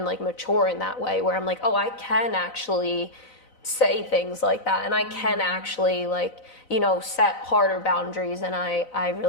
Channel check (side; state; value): right; late; 4.0 ms